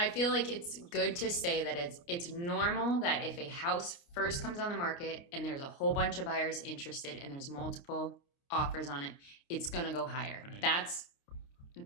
feel like it's good to say that it's normal that if a house first comes on the market and there's a whole bunch of buyers interested and there's multiple offers on it, it's going to go higher. Right. That's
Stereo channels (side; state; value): right; late; 29 ms